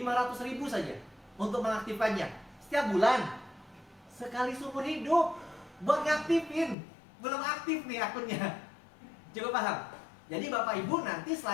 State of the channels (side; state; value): right; drops out; at 6.8 s